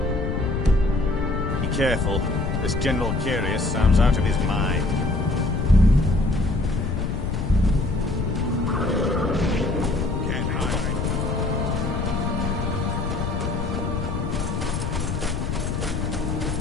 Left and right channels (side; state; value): left; noise; rumble, 2 dB below the sound